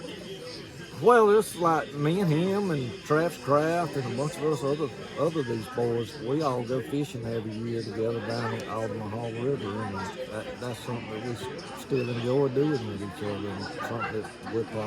Well, it's like me and him and Travis Kraft and a bunch of us other these boys. We all go fishing every year together down at Omaha River, and that's something that we still enjoy doing with each other, and something that we'll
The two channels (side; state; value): both; identical; correlation 1.00